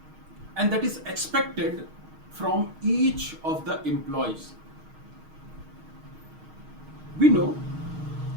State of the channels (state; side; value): late; left; 6.4 ms